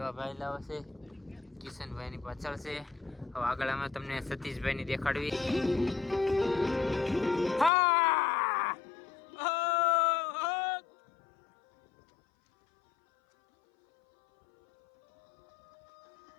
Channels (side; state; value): right; drops out; at 7.7 s